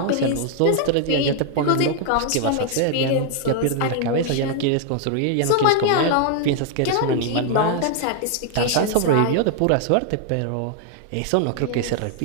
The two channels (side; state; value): both; different; correlation 0.00